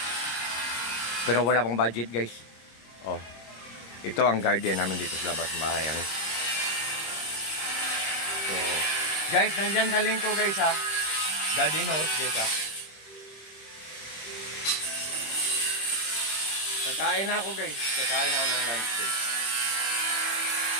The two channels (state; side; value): late; right; 26 ms